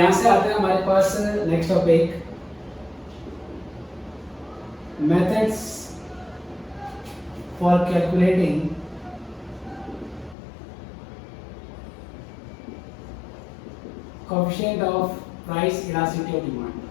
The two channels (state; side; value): drops out; right; at 10.4 s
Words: से आते हैं हमारे पास next topic, methods for calculating coefficient of price elasticity of demand.